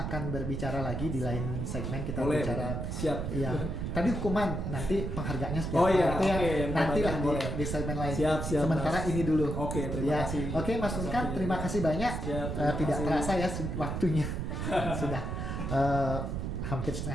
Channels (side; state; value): right; noise; rumble, 3 dB below the sound